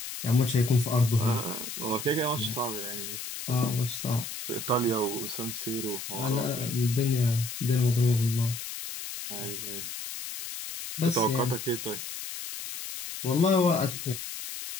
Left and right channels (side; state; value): left; noise; hiss, 8 dB below the sound